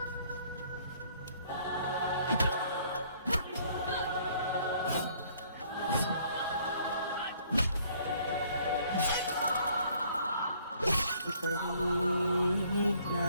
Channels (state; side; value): inverted; both; correlation -0.61